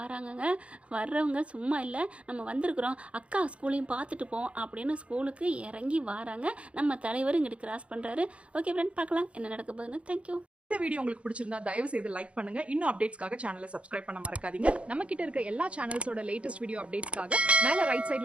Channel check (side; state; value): left; late; 0.061 ms